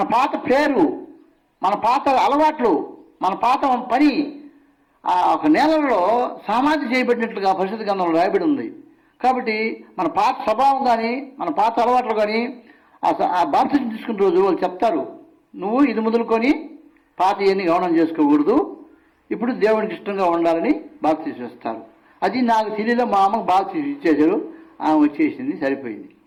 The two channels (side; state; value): both; identical; correlation 1.00